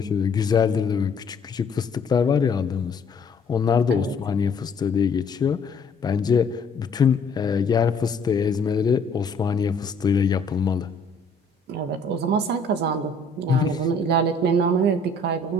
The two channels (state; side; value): quieter; right; 3.2 dB